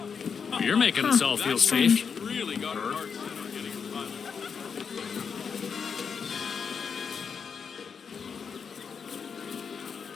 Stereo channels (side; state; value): right; quieter; 6.3 dB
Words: making us all feel safe. Really got her heart set on getting a pilot.